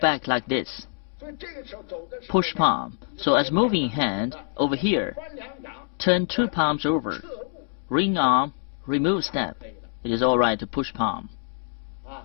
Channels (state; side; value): silent; right; digital silence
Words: like this. Push palm. So as moving hand over here, turn two palms over. Ring arm, remove step. It is all right to push palm.